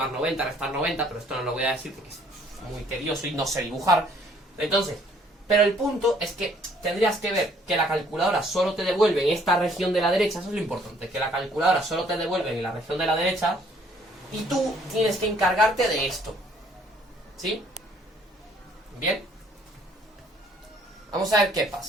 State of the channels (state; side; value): normal; both; correlation 0.61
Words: 90, restar 90, pero esto no lo voy a decir porque es muy tedioso y no sé dibujar. Entonces, pero el punto es que tendrías que ver que la calculadora solo te devuelve en esta región de la derecha, eso es lo importante, que la calculadora solo te devuelve en la región de la derecha y tú tienes que encargarte de esto. ¿Sí? Bien. Vamos a ver qué